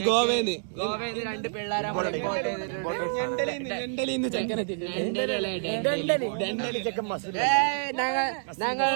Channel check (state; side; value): silent; left; 58 dB below the other